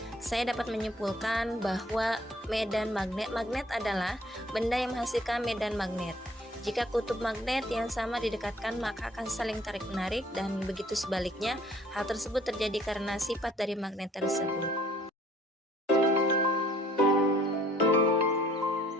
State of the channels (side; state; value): both; normal; correlation 0.59